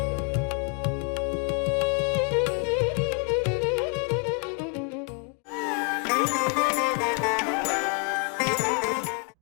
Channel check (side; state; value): right; quieter; 37.9 dB